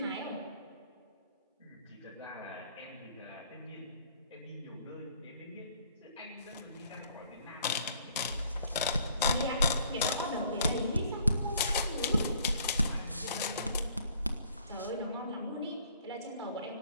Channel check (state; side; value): inverted; both; correlation -0.59